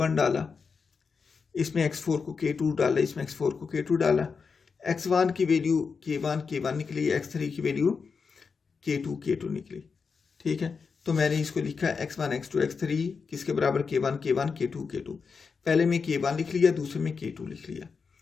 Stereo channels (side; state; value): right; quieter; 5.3 dB